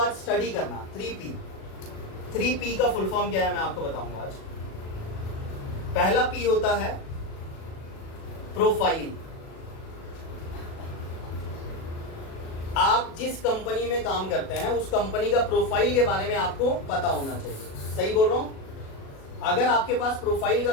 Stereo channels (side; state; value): right; late; 37 ms